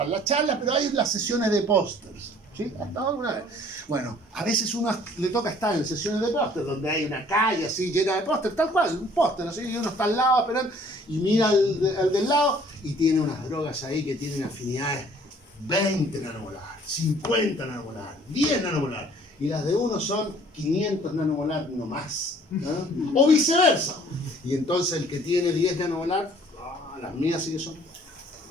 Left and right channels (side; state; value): both; normal; correlation 0.56